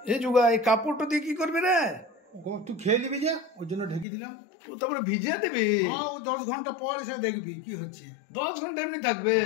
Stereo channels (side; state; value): right; drops out; at 4.0 s